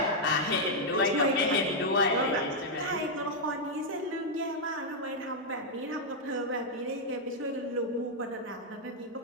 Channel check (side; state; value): both; normal; correlation -0.03